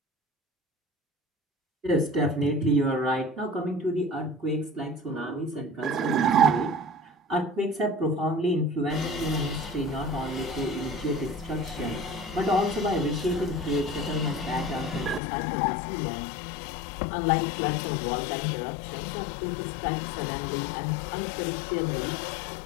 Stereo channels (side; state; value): right; drops out; at 15.2 s